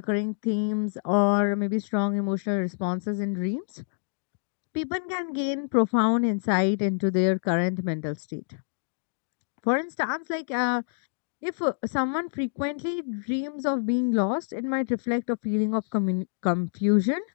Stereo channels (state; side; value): silent; right; digital silence